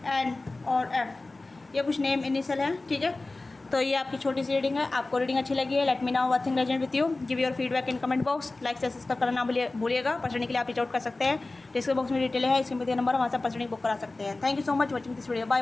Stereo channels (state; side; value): quieter; right; 3.2 dB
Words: एन और एफ, ये कुछ नेम इनिशियल है, ठीक है। तो ये आपकी छोटी सी रीडिंग है। आपको रीडिंग अच्छी लगी है, let me now what thing resonate with you, give your feedback in comment box, like से सब्सक्राइब करना भूलिएगा। पर्सनली के लिए आप रीच आउट कर सकते हैं, डिस्क्रिप्शन बॉक्स में डिटेल है, इसमें दिया नंबर वहाँ से पर्सनली बुक करा सकते हैं। Thank you so much watching this video, bye